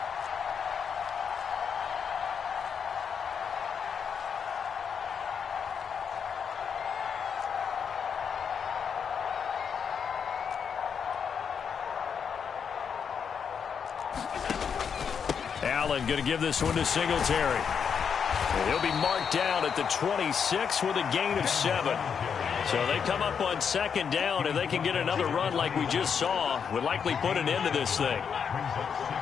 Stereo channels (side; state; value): right; quieter; 6.9 dB